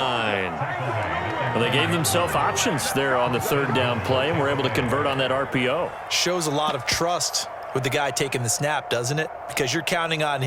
Well, they gave themselves options there on the 3rd down play and were able to convert on that RPO. Shows a lot of trust with the guy taking the snap, doesn't it? Because you're counting on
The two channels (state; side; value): identical; both; correlation 1.00